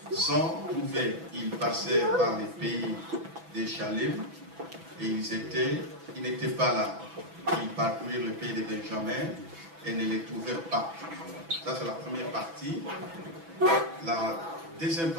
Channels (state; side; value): late; left; 6.0 ms